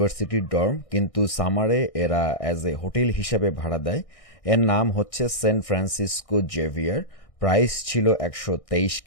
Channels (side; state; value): right; late; 1.6 ms